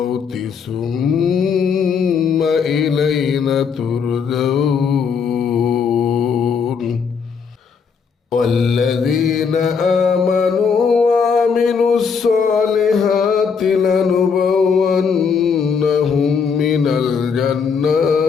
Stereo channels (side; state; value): right; quieter; 5.9 dB